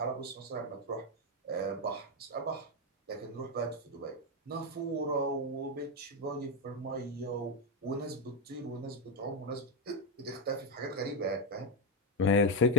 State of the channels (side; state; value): both; normal; correlation 0.06